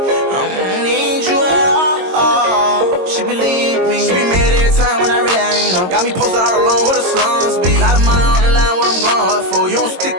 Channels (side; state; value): left; late; 22 ms